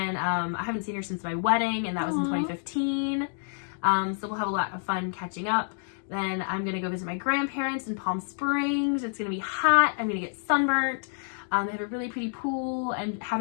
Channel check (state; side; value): silent; right; 59 dB below the other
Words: I haven't seen her since my wedding, and that was in 2015. So we'll have a lot of fun catching up. Then I'm going to go visit my grandparents in Palm Springs. It's going to be hot. I'm going to get sunburnt. They have a really pretty pool, and